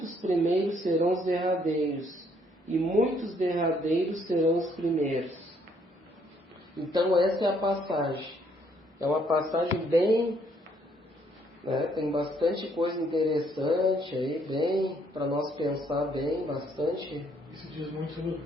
primeiros serão os derradeiros, e muitos derradeiros serão os primeiros. Então, essa é a passagem. É uma passagem bem... tem bastante coisa interessante aí, bem, para nós pensar bem, bastante. Isso diz muito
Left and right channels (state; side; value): normal; both; correlation 0.67